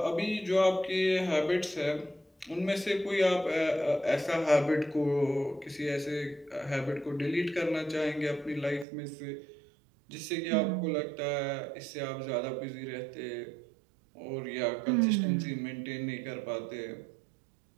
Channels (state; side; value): drops out; left; at 8.8 s